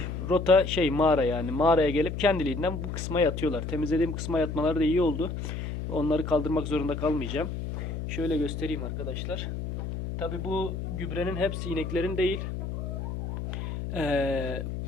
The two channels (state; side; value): noise; left; hum, 5 dB below the sound